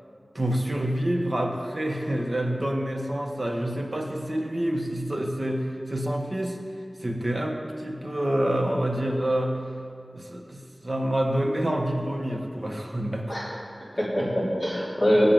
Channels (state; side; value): normal; both; correlation 0.96